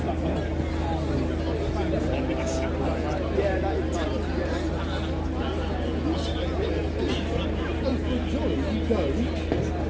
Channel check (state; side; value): identical; both; correlation 1.00